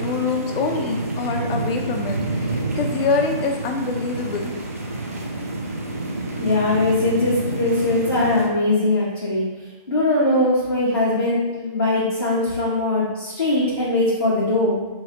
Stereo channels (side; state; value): both; inverted; correlation -0.37